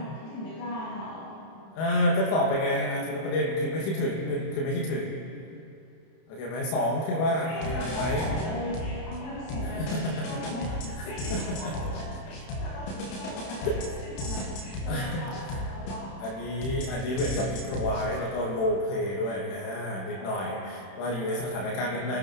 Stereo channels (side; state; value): right; late; 31 ms